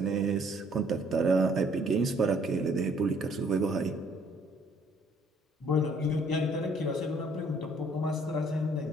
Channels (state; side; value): normal; both; correlation 0.62